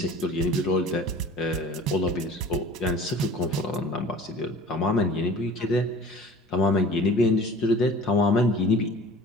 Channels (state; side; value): normal; both; correlation 0.43